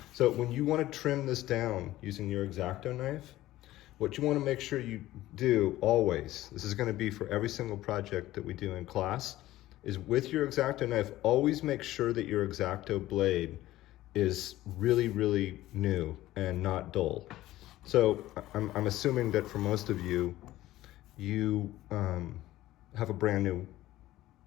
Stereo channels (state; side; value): quieter; right; 15.6 dB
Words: So when you want to trim this down using your exacto knife, what you want to make sure you do always, this is going to be for every single project that we do in class, is with your exacto knife, always make sure that your exacto blade is really, really new and not dull. So I'm assuming that for most of you, you have a brand new